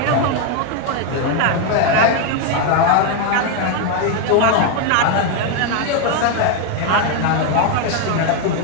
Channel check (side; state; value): both; different; correlation 0.01